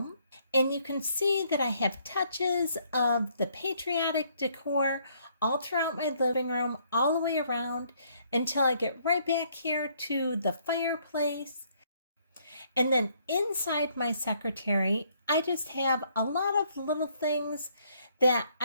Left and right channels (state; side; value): inverted; both; correlation -0.67